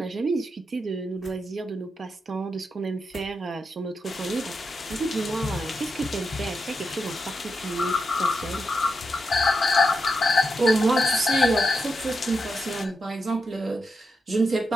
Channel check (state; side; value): normal; both; correlation 0.86